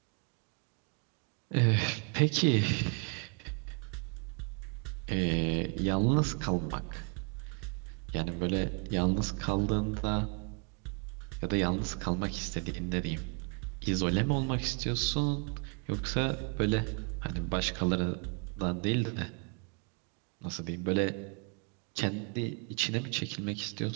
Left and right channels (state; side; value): quieter; left; 37.3 dB